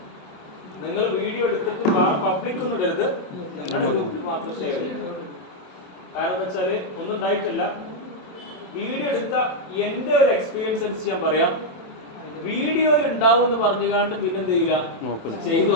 നിങ്ങൾ വീഡിയോ എടുത്തിട്ട് പബ്ലിക് ഒന്നും ഇടരുത്, നിങ്ങളുടെ ഗ്രൂപ്പിൽ മാത്രം ഷെയർ ചെയ്യുക. കാരണം എന്താ വെച്ചാല് ഒന്നും ഉണ്ടായിട്ടില്ല. വീഡിയോ എടുത്ത എന്റെ ഒരു എക്സ്പീരിയൻസ് അനുസരിച്ച് ഞാൻ പറയാം, വീഡിയോയിൽ ഉണ്ടാവും എന്ന് പറഞ്ഞുകൊണ്ട് പിന്നെ എന്ത് ചെയ്യില്ല, ചെയ്തു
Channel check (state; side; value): late; right; 27 ms